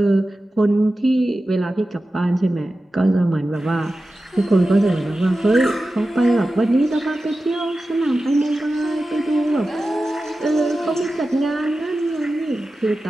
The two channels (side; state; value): both; normal; correlation 0.94